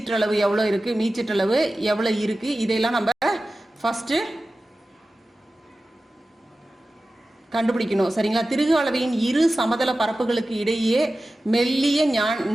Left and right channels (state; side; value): normal; both; correlation 0.95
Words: எவ்வளவு இருக்கு, மீச்சிற்றளவு எவ்வளவு இருக்கு, இதையெல்லாம் நம்ம ஃபர்ஸ்ட் கண்டுபிடிக்கணும். சரிங்களா. திருகு அளவியின் இரு சமதள பரப்புகளுக்கு இடையே மெல்லிய